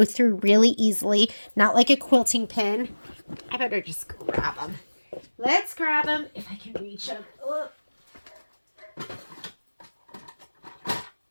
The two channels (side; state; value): both; inverted; correlation -1.00